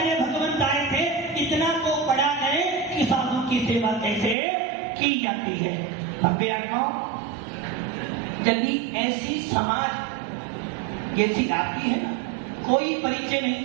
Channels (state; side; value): drops out; left; at 4.4 s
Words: भगवंत आए थे इतना को पढ़ा गए कि साधु की सेवा कैसे की जाती है। भव्य आत्माओं, यदि ऐसी समाज जैसी आती है ना, कोई परिचय नहीं